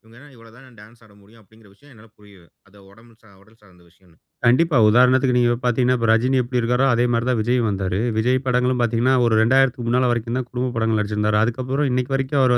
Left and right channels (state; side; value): identical; both; correlation 1.00